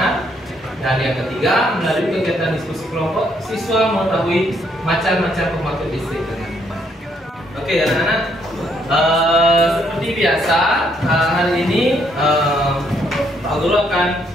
Dan yang ketiga, melalui kegiatan diskusi kelompok, siswa mengetahui macam-macam pembangkit listrik dengan benar. Oke, anak-anak, Seperti biasa, hari ini Pak Guru akan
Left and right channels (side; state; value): both; normal; correlation 0.71